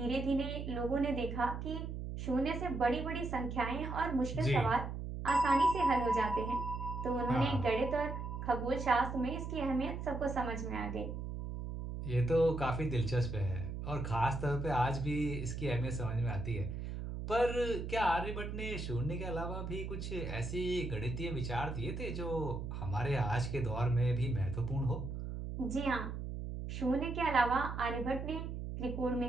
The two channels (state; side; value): noise; right; hum, 6 dB below the sound